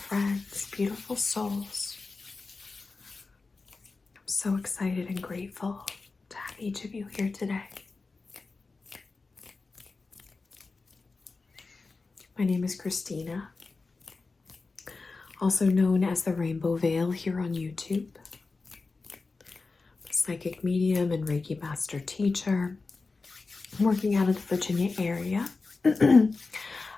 friends, beautiful souls. I'm so excited and grateful to have each of you here today. My name is Christina, also known as the Rainbow Veil here on YouTube. I'm a psychic medium and Reiki master teacher. I'm working out of the Virginia area.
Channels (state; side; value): quieter; right; 3.9 dB